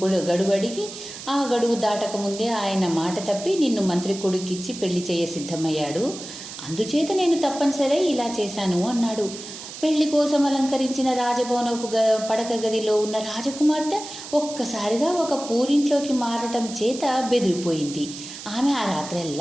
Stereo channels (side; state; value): right; noise; hiss, 12 dB below the sound